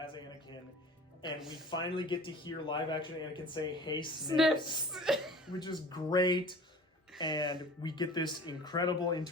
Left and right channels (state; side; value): normal; both; correlation 0.43